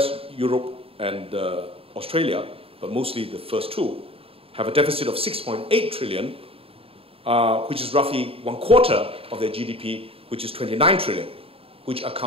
Europe, and Australia, but mostly the first two, have a deficit of 6.8 trillion, which is roughly 1/4 of their GDP, which is 29 trillion, which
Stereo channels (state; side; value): late; left; 0.27 ms